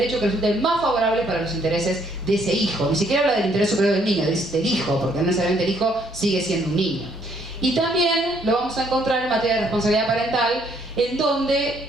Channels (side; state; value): both; normal; correlation 0.67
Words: que resulte más favorable para los intereses de ese hijo. Ni siquiera habla del interés superior del niño, del hijo, porque no necesariamente el hijo sigue siendo un niño. Y también lo vamos a encontrar en materia de responsabilidad parental, en donde